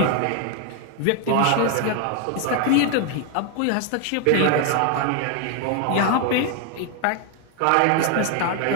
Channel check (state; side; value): different; both; correlation 0.01